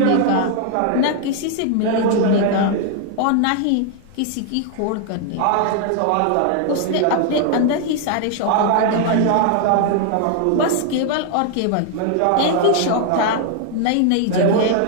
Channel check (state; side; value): different; both; correlation 0.00